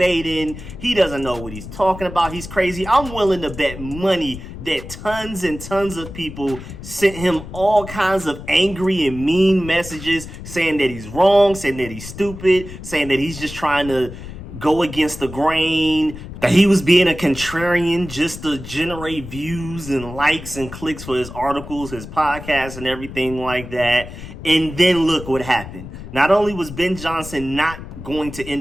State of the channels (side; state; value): left; noise; rumble, 12 dB below the sound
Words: He doesn't know what he's talking about. He's crazy. I'm willing to bet money that tons and tons of people sent him all kinds of angry and mean messages saying that he's wrong, saying that he's stupid, saying that he's just trying to go against the grain, that he was being a contrarian just to generate views and likes and clicks for his articles, his podcasts, and everything like that. And then look what happened. Not only was Ben Johnson not going to